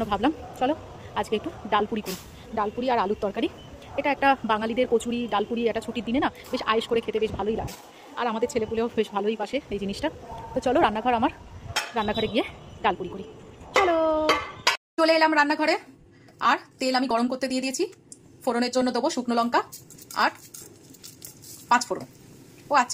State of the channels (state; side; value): identical; both; correlation 1.00